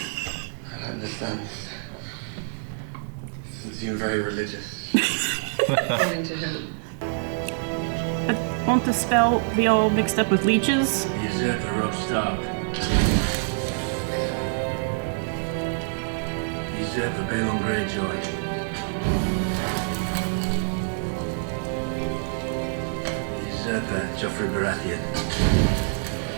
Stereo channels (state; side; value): silent; left; digital silence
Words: don't understand. You seem very religious. According to who? But won't the spell be all mixed up with leeches? The usurper Rob Stark. The usurper Balon Greyjoy. The usurper Joffrey Baratheon.